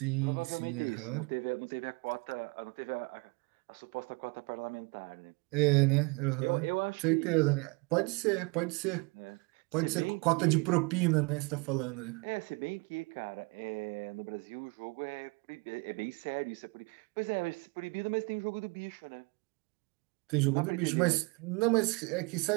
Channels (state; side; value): quieter; left; 28.6 dB